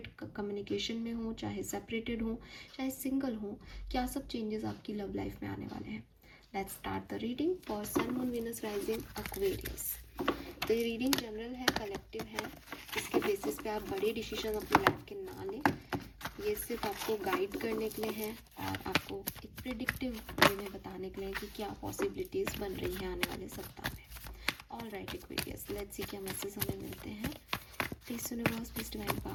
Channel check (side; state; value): both; identical; correlation 1.00